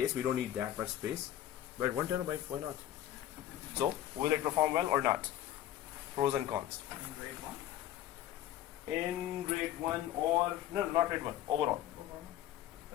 We don't need that much space, but 1 terabyte, why not? So will it perform well or not? Pros and cons. In RAID 1? In RAID 1, or no, not RAID 1, overall.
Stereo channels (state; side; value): quieter; right; 12.4 dB